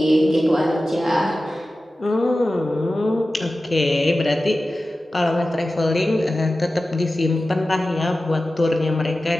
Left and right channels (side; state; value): both; normal; correlation 0.95